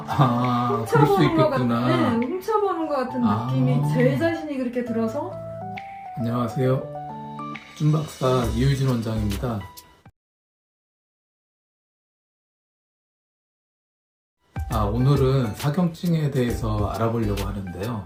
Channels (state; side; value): identical; both; correlation 1.00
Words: 훔쳐보는 것 있겠구나. 같은, 훔쳐보는 것 같은 느낌이 제 자신이 그렇게 들어서. 안녕하세요. 쭌박사 이유진 원장입니다. 오늘은 사경증에 대해서 알아보려고 하는데요.